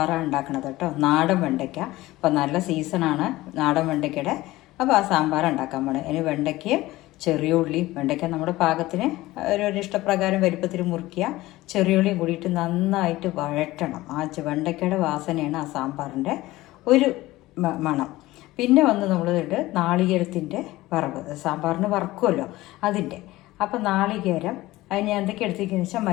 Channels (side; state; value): right; quieter; 18.0 dB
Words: ഉണ്ടാക്കുന്നത് കേട്ടോ. നാടൻ വെണ്ടയ്ക്ക. അപ്പം നല്ല സീസണാണ് നാടൻ വെണ്ടയ്ക്കയുടെ. അപ്പോൾ ആ സാമ്പാർ ഉണ്ടാക്കാൻ പോണേ. അതിന് വെണ്ടയ്ക്കയും ചെറിയ ഉള്ളി, വെണ്ടയ്ക്ക നമ്മുടെ പാകത്തിന് ഒരു ഇഷ്ടപ്രകാരം വലുപ്പത്തിൽ മുറിക്കുക. ചെറിയ ഉള്ളിയും കൂടിയിട്ട് നന്നായിട്ട് വഴറ്റണം. ആ വെണ്ടയ്ക്കയുടെ വാസനയാണ് ആ സാമ്പാറിൻ്റെ ഒരു മണം. പിന്നെ വന്ന് നമ്മളിട്ട് നാളികേരത്തിൻ്റെ വറവ്, സാമ്പാറിന് വറക്കുമല്ലോ അതിൻ്റെ. അപ്പം നാളികേരം അതിന് എന്തൊക്കെ എടുത്തിരിക്കുന്നത് വെച്ചാൽ